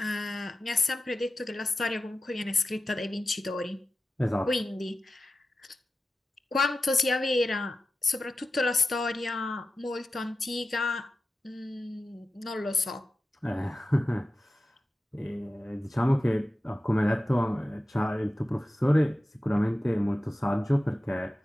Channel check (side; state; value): both; normal; correlation 0.94